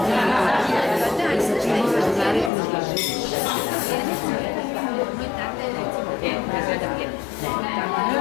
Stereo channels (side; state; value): right; drops out; at 2.5 s